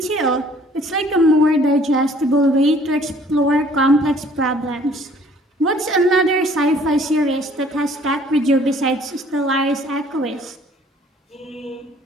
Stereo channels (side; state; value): both; normal; correlation 0.57